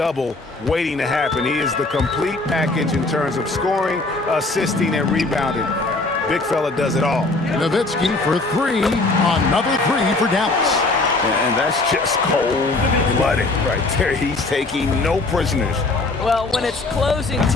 waiting to happen. He is the complete package in terms of scoring, assisting, and rebounding. Big fella does it all. Nowitzki for three. Another three for Dallas. And that's just cold-blooded right there. He's taking no prisoners. Well, when it's closing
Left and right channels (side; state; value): right; quieter; 3.3 dB